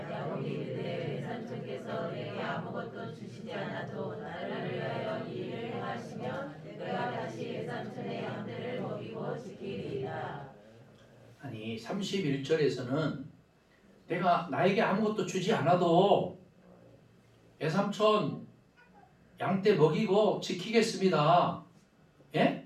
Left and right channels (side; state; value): both; identical; correlation 1.00